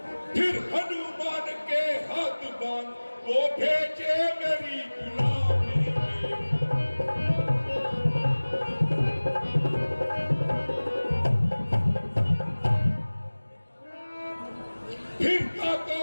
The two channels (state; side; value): inverted; both; correlation -1.00